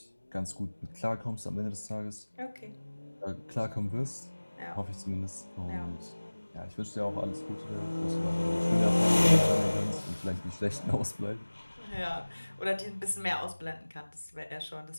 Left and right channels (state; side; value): inverted; both; correlation -1.00